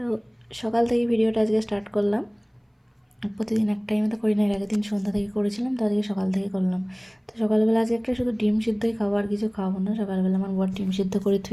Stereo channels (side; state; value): both; identical; correlation 1.00